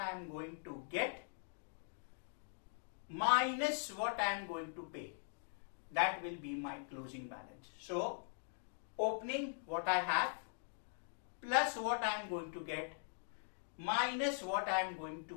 am going to get minus what I am going to pay. That will be my closing balance. So, opening what I have plus what I am going to get minus what I am going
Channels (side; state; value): right; silent; digital silence